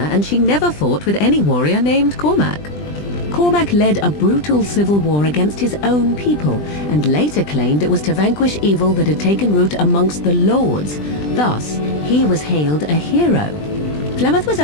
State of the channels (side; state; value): right; late; 20 ms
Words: and she never fought with any warrior named Cormac. Cormac led a brutal civil war against his own people, and later claimed it was to vanquish evil that had taken root amongst the lords. Thus, he was hailed a hero. Flemeth was